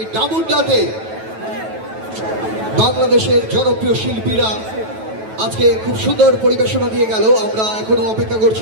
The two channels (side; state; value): left; late; 9.2 ms